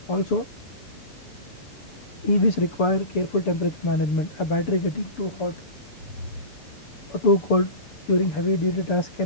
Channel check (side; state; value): right; late; 6.9 ms